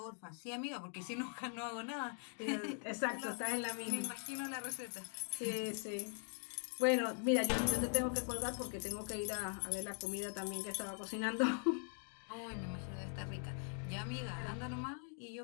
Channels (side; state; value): right; silent; 50 dB below the other